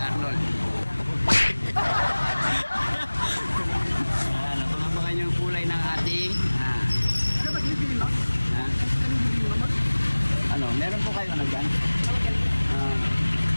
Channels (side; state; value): both; inverted; correlation -1.00